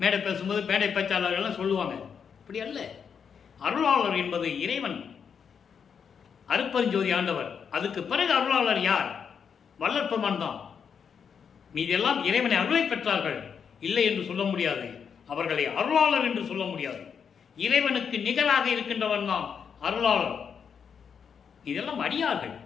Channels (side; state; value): right; quieter; 6.9 dB